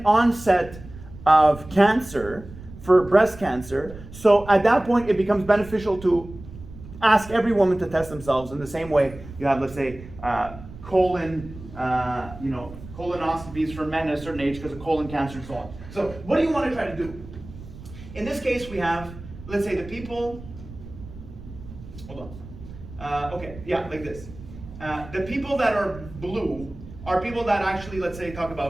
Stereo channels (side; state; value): right; noise; rumble, 15 dB below the sound